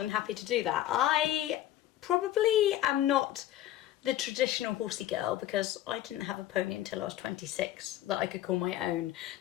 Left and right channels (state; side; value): quieter; right; 13.3 dB